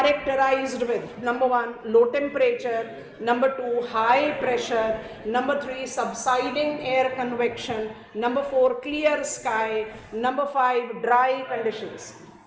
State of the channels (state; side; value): identical; both; correlation 1.00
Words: with number 1, low temperature, number 2, high pressure, number 3, subsiding air convection, number 4, clear sky, number 5, dry conditions.